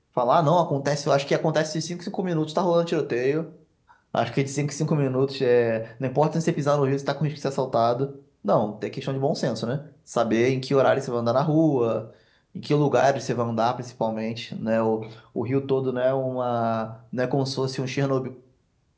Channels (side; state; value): both; identical; correlation 1.00